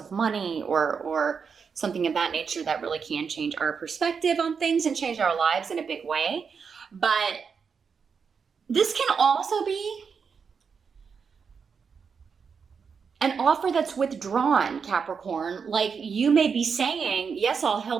money or something of that nature, that really can change our perspective on things and change our lives in a big way. But this can also be an offer that's withdrawn, Capricorn. Like you may be saying, yes, I'll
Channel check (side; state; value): left; quieter; 6.0 dB